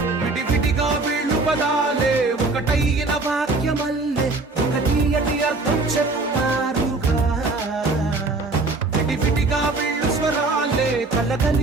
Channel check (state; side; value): quieter; left; 3.4 dB